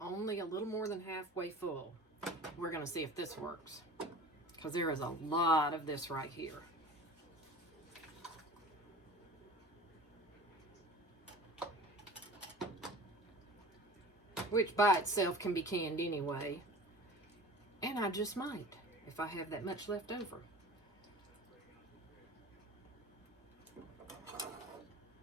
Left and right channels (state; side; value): normal; both; correlation 0.39